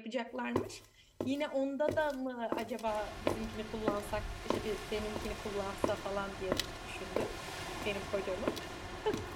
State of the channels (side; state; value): both; identical; correlation 1.00